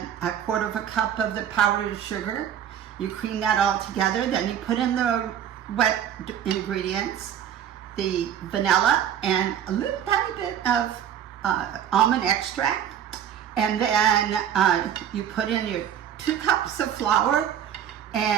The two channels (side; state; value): left; quieter; 9.6 dB